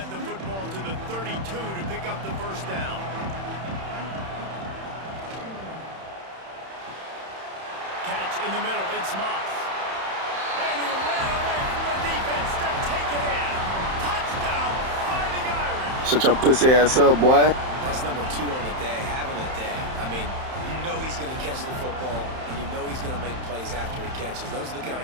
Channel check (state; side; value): late; left; 31 ms